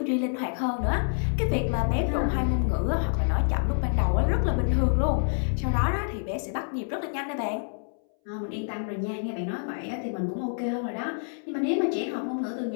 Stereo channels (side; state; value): right; silent; 60 dB below the other